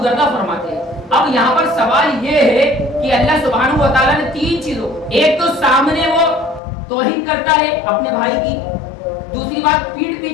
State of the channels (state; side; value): drops out; right; at 6.6 s